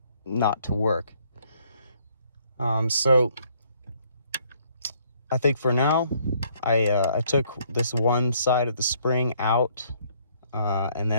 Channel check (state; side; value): inverted; both; correlation -0.65